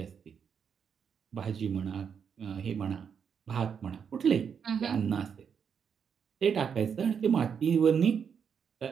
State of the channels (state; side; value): quieter; left; 7.0 dB